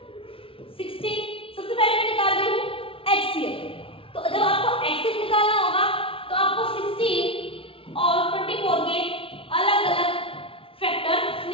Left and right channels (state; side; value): late; right; 0.26 ms